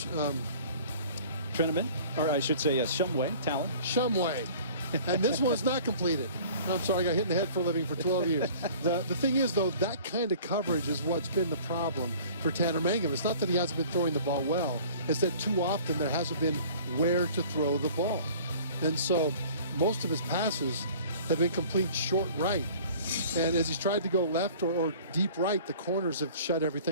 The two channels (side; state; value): both; inverted; correlation -0.48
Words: Trineman, or I should say, yes, Shumway, Talon. Shumway. And this one's not completed. I'm sorry, I got hit in the head for a living for 12 years. The thing is, though, that kind of coverage is what's been the problem for Tanner Mangum. It's not that he hasn't been throwing the ball well. It's that too often there hasn't been where to throw the ball. And so most of his passes have been complete short right. And as he's tried to go left or deep right, the corners have shut